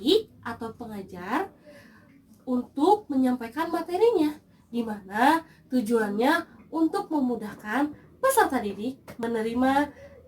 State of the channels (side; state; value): both; identical; correlation 1.00